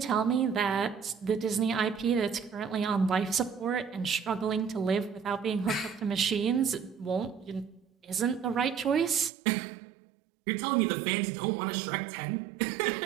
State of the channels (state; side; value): drops out; left; at 9.3 s